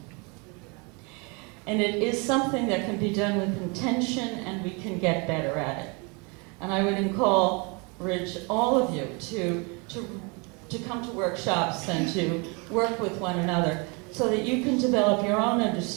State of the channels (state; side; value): quieter; left; 31.1 dB